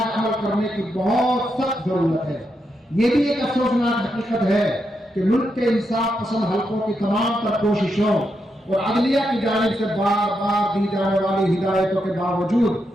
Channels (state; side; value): normal; both; correlation 0.83